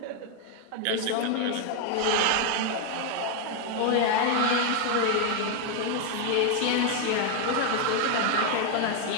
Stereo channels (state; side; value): different; both; correlation 0.01